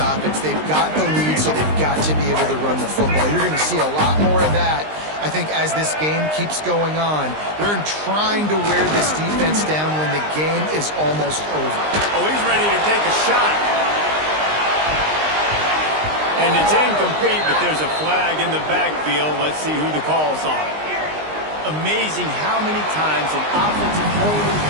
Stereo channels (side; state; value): left; late; 19 ms